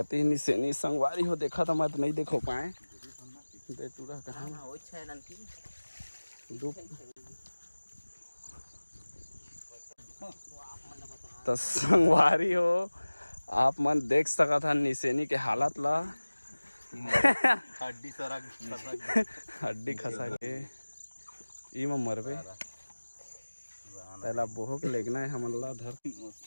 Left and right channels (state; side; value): inverted; both; correlation -1.00